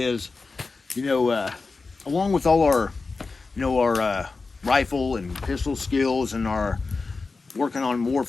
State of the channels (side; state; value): right; quieter; 4.1 dB